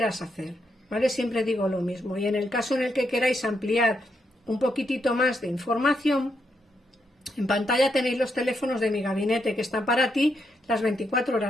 hacer, ¿vale? Siempre digo lo mismo. Y en el caso en el que queráis ampliar un poquitito más de información, en pantalla tenéis los teléfonos de mi gabinete que están para ti las 24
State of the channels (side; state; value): both; normal; correlation 0.80